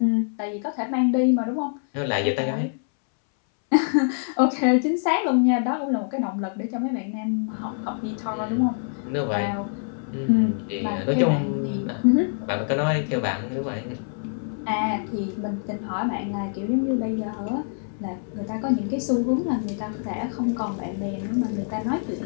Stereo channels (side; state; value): right; silent; 61 dB below the other